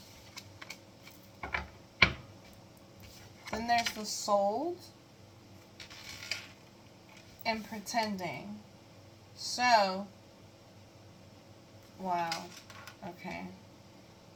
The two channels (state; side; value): identical; both; correlation 1.00